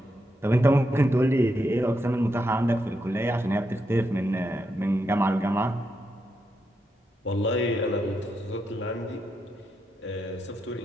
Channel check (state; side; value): normal; both; correlation 0.83